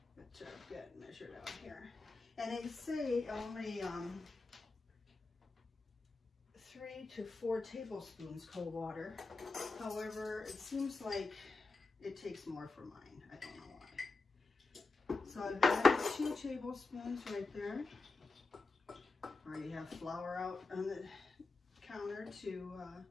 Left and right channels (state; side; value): quieter; right; 3.8 dB